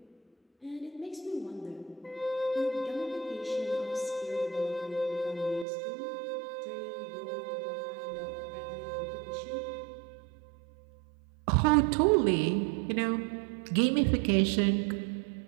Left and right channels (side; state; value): left; drops out; at 5.7 s